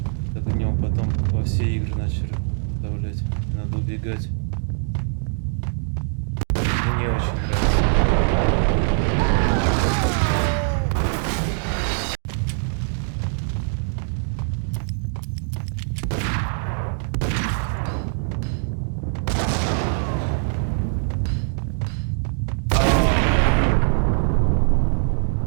Так в нем потом во все игры начали вставлять. Надо убегать. Мне очень нравится.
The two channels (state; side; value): silent; left; digital silence